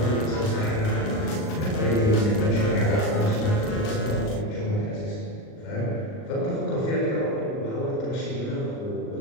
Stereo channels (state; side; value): late; right; 38 ms